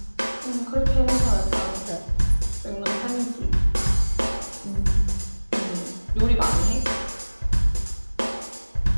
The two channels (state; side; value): inverted; both; correlation -1.00